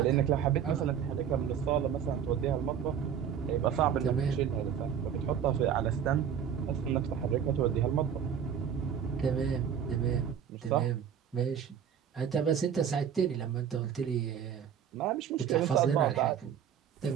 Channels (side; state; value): left; quieter; 8.3 dB